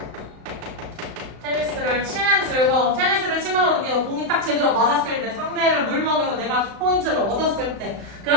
테니스를 치는 즐거움. 테니스를 치면서 느끼는 공이 딱 제대로 맞았을 때, 상대를 물먹여서 내가 포인트를 얻었을 때,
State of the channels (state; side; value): late; left; 35 ms